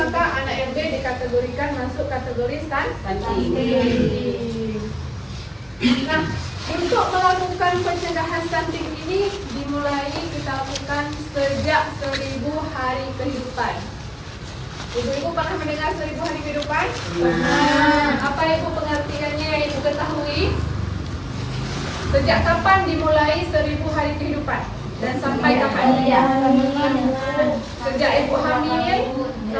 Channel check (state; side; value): identical; both; correlation 1.00